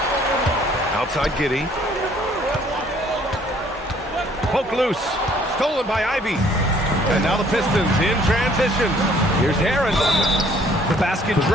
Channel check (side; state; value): both; normal; correlation 0.60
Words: Outside Giddey. Poke loose. Stolen by Ivy. And now the Pistons in transition. Here's Harris. The basket